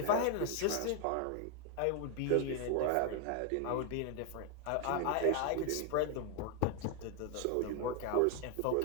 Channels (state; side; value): different; both; correlation 0.00